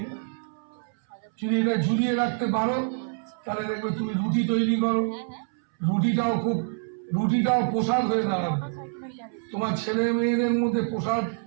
জুড়িয়ে রাখতে পারো, তাহলে দেখবে তুমি রুটি তৈরি করো, রুটিটাও প্রসাদ হয়ে দাঁড়াবে। তোমার ছেলে মেয়েদের মধ্যে প্রসাদ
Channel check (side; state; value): left; silent; 61 dB below the other